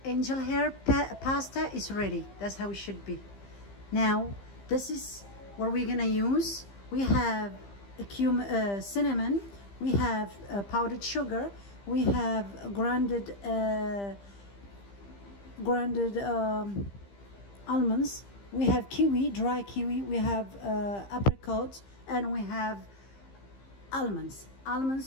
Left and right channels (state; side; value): late; right; 15 ms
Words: angel hair pasta is ready. That's how it should be. Now This is what we're gonna use. We have cinnamon, we have powdered sugar, we have grounded almonds, we have kiwi, dry kiwi, we have apricots, and we have almonds.